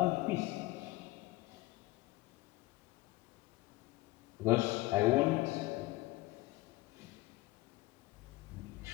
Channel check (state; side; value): quieter; right; 19.5 dB